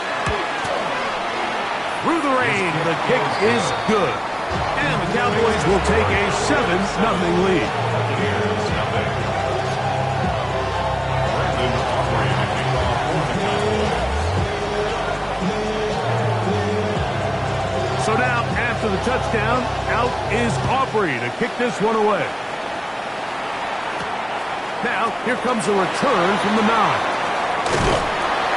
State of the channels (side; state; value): both; identical; correlation 1.00